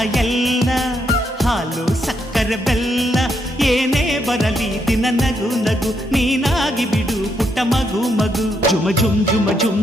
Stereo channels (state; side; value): normal; both; correlation 0.78